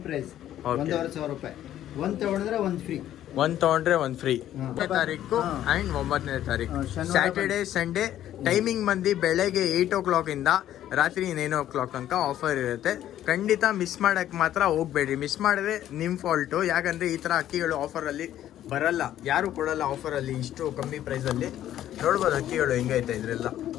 ಪ್ರೈಸ್, 1500 ರೂಪಾಯಿ. ಒಂದು ತಗೊಂಡ್ರೆ ಒಂದು ಫ್ರೀ. ಒಂದು ತಗೊಂಡ್ರೆ ಒಂದು ಫ್ರೀ. 8ನೇ ತಾರೀಕು ಅಂಡ್ 9ನೇ ತಾರೀಕು ಸ್ಯಾಟರ್ಡೆ ಸಂಡೇ. ಟೈಮಿಂಗ್ ಬಂದು ಬೆಳಗ್ಗೆ 8 o'clock ಇಂದ ರಾತ್ರಿ 9 o'clock ತನಕ ಆಫರ್ ಇರುತ್ತೆ. ಖಂಡಿತ ಮಿಸ್ ಮಾಡಕ್ಕೆ ಮಾತ್ರ ಹೋಗ್ಬೇಡ್ರಿ. ಮಿಸ್ ಮಾಡಿದ್ರೆ ನಿಮ್ಮ ಫಾಲ್ಟು. ಯಾಕಂದರೆ ಈ ಥರ ಅಕ್ಕಿಗಳು ಆಫರಲ್ಲಿ ಬರಲ್ಲ, ಯಾರು ಕೊಡಲ್ಲ ಆಫರಲ್ಲಿ ಇಷ್ಟು ಕಮ್ಮಿ ಪ್ರೈಸಲ್ಲಿ. ನೋಡ್ಬೋದು ಅಕ್ಕಿಗಳು ಹೆಂಗೈತೆ. ಇದರೆಲ್ಲ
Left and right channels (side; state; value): right; quieter; 12.0 dB